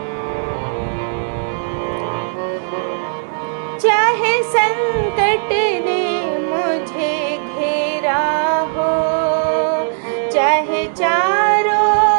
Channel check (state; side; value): silent; left; digital silence